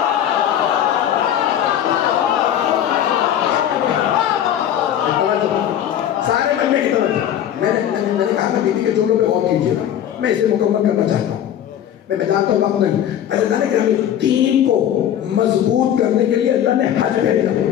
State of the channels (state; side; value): quieter; right; 10.4 dB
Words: سارے مجمع کی طرف میں نے کہا میں بیوی کے جملوں پہ غور کیجیے گا، میں اسے مکمل کرنا چاہتا ہوں، میں جانتا ہوں وقت نہیں۔ اللہ نے کہ دین کو مضبوط کرنے کے لیے اللہ نے حج بھیجا،